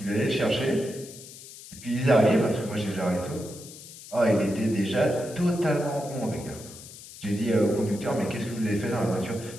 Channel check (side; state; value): left; noise; hiss, 16 dB below the sound